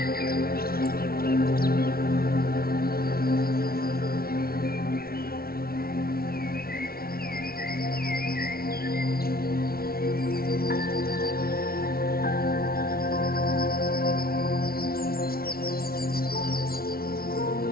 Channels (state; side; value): late; right; 0.44 ms